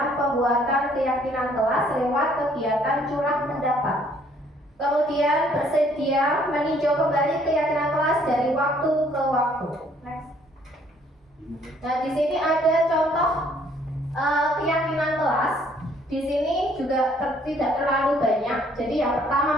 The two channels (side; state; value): both; normal; correlation 0.62